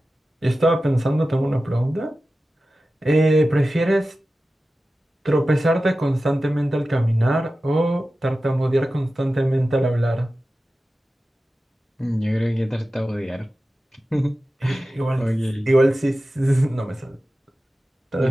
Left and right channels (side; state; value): both; normal; correlation 0.94